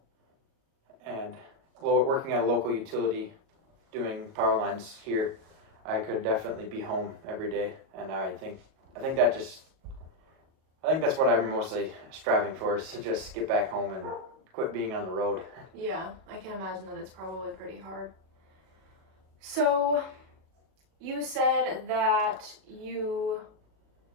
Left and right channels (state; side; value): late; left; 37 ms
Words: and working at a local utility doing power lines here. I could definitely be home every day, and I think that just I think that's what I'm mostly striving for, is to just get back home and quit being on the road. Yeah, I can imagine that it's probably pretty hard. So, you said that you